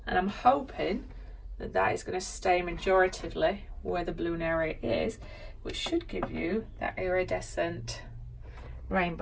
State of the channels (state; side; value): identical; both; correlation 1.00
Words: and I'm hoping that that is going to stay majoritively where the blue area is, which should give you that iridescent